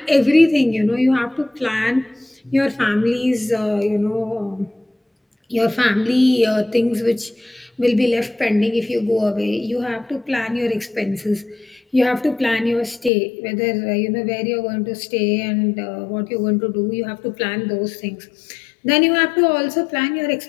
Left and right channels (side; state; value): right; drops out; at 13.1 s